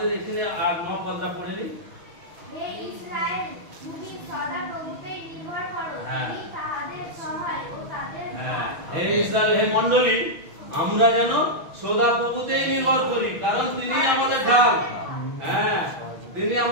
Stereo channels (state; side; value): late; left; 6.2 ms